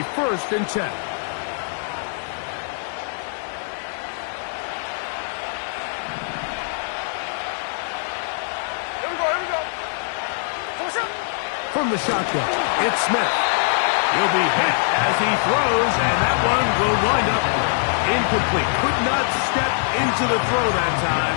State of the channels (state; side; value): silent; right; 57 dB below the other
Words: 1st and 10. From the shotgun, it's Smith. He'll be hit as he throws, and that one will wind up incomplete. Could not step into the throw that